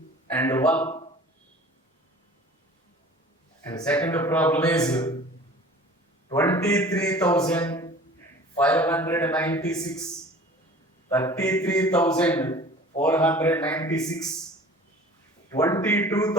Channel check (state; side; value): normal; both; correlation 0.44